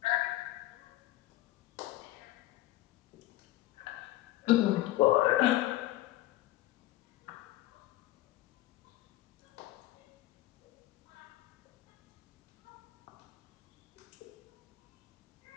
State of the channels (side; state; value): right; quieter; 16.0 dB